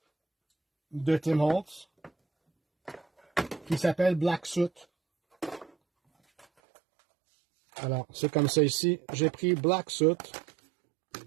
de Tim Holtz qui s'appelle Black Soot. Alors, c'est comme ça ici. J'ai pris Black Soot.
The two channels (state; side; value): drops out; left; at 6.5 s